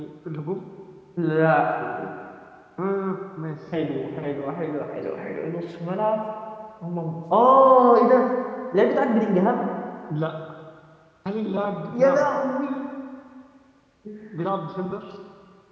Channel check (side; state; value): both; identical; correlation 1.00